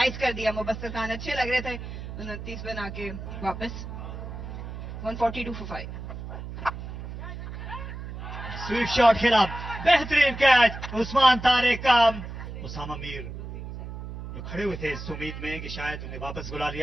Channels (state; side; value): noise; right; hum, 9 dB below the sound